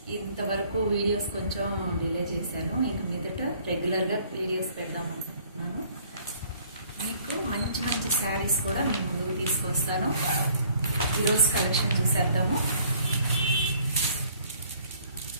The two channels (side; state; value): both; inverted; correlation -0.58